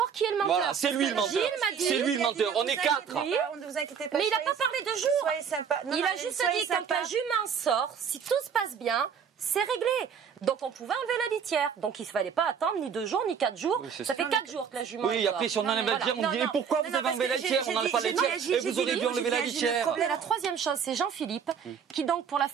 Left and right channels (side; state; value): left; quieter; 7.2 dB